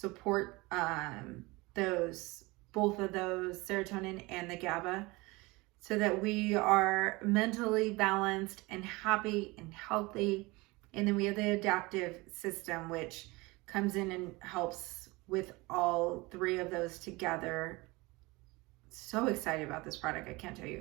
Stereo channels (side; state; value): left; quieter; 23.4 dB